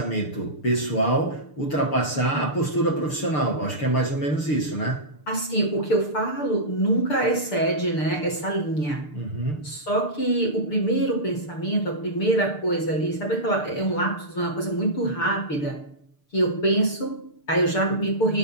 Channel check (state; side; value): late; right; 6.7 ms